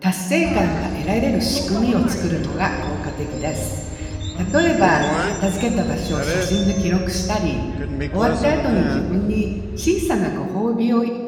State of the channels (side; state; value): both; identical; correlation 1.00